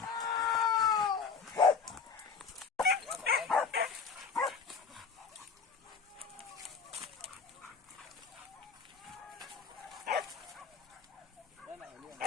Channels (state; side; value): quieter; right; 5.5 dB